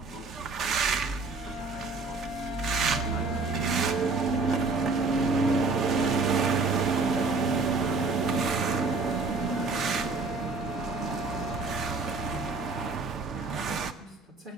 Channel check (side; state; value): left; quieter; 3.9 dB